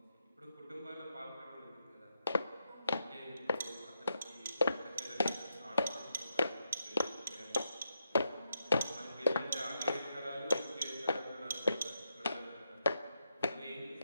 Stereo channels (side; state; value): both; inverted; correlation -0.82